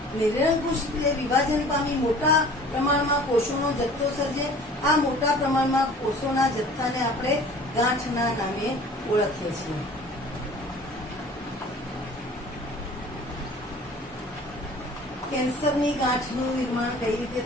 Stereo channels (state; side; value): normal; both; correlation 0.47